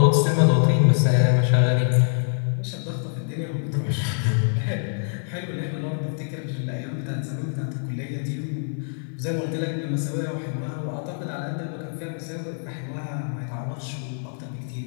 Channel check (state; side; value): silent; right; 62 dB below the other